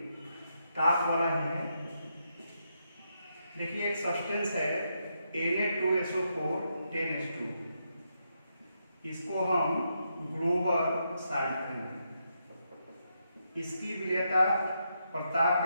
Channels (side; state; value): both; inverted; correlation -0.81